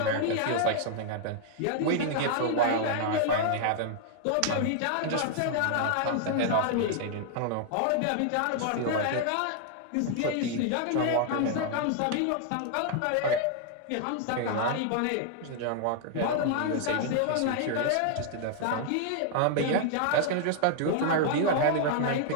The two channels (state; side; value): different; both; correlation 0.00